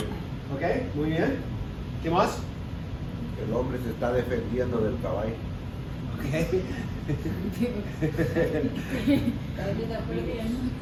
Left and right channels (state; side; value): identical; both; correlation 1.00